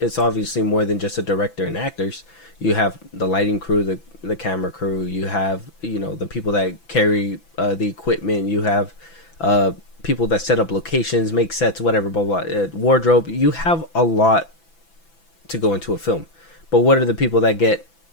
obviously more than just a director and actors. You have the lighting crew, the camera crew, you have the people that carry the equipment, you have people that set up locations, make sets, whatever, blah blah, wardrobe. You have a lot to go into a film, but what are the people that get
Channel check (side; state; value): right; late; 6.0 ms